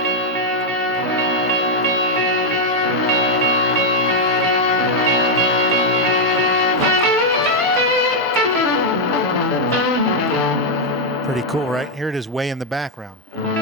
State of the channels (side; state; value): both; normal; correlation -0.01